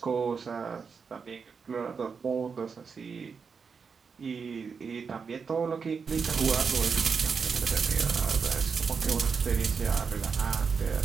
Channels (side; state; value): left; quieter; 5.7 dB